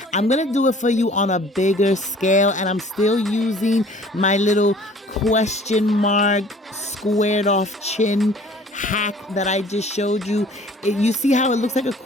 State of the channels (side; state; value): both; normal; correlation 0.51